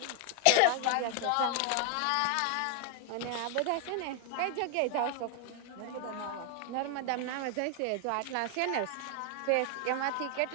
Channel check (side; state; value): both; different; correlation 0.00